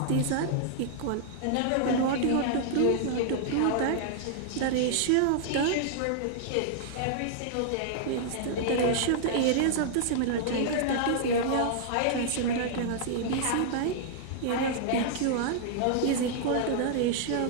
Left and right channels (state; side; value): different; both; correlation -0.01